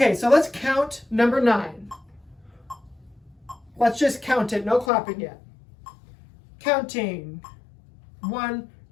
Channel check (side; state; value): right; drops out; at 4.9 s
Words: so let's count number 9. Let's just count it, no clapping yet. Counting. 1,